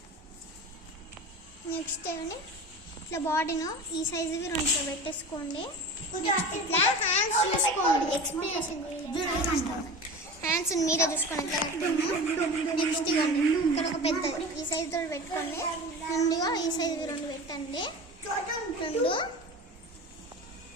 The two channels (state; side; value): normal; both; correlation 0.33